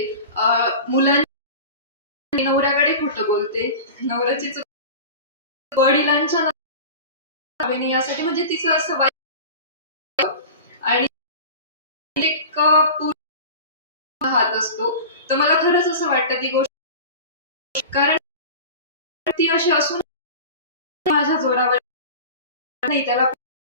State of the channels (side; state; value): both; inverted; correlation -0.33